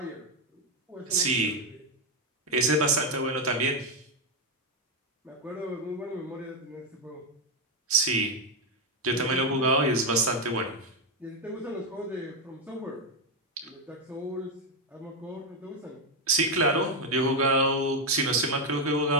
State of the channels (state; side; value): normal; both; correlation 0.05